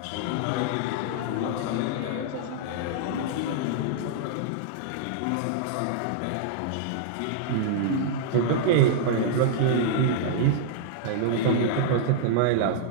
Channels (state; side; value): different; both; correlation -0.01